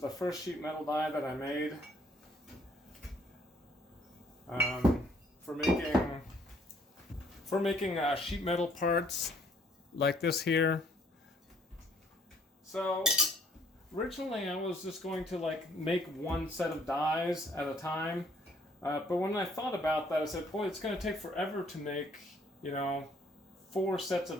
the first sheet metal die that I made for making sheet metal parts like this here. So originally I was just going to make one set of dies at a time, but when I thought about that, I said, boy, it's going to take forever to make 4 sets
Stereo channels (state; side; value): normal; both; correlation 0.63